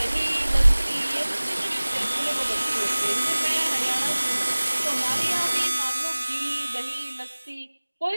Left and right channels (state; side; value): inverted; both; correlation -1.00